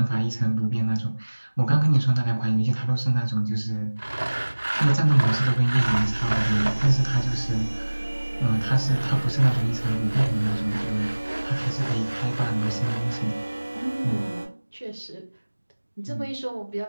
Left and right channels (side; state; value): both; inverted; correlation -1.00